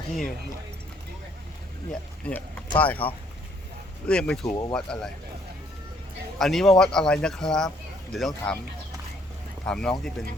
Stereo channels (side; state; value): both; normal; correlation 0.65